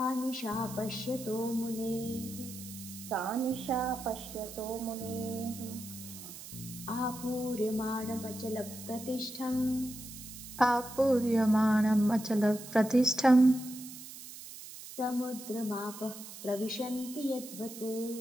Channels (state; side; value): noise; right; hiss, 13 dB below the sound